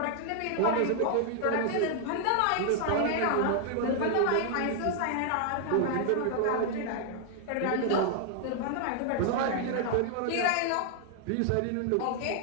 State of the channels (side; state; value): both; different; correlation 0.00